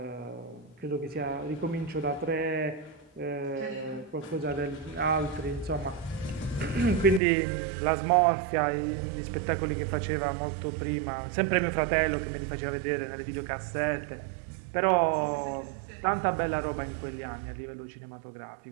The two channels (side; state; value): left; drops out; at 7.2 s